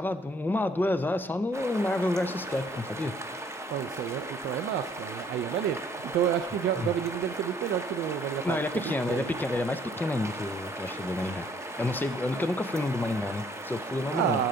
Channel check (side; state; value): both; normal; correlation 0.61